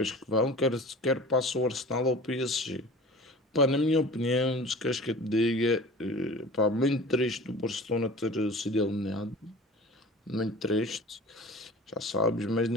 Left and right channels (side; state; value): both; normal; correlation 0.39